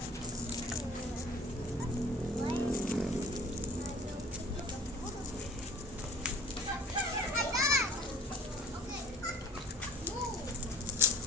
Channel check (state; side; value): normal; both; correlation 0.48